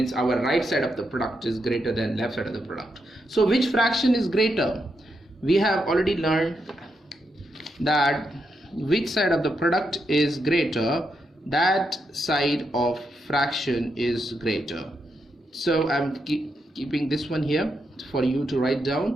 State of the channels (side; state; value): both; normal; correlation 0.83